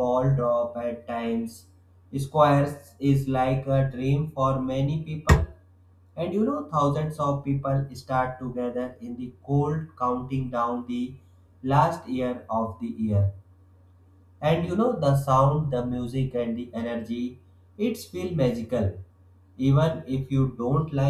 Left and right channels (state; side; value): identical; both; correlation 1.00